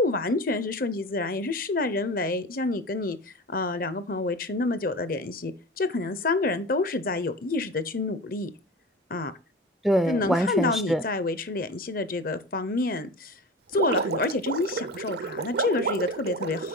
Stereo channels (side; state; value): both; normal; correlation 0.32